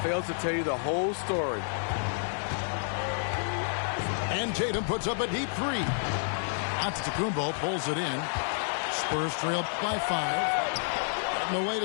fails to tell you the whole story. And Tatum puts up a deep three. Antetokounmpo pulls it in. Spurs trail by 5. And the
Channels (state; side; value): silent; right; 58 dB below the other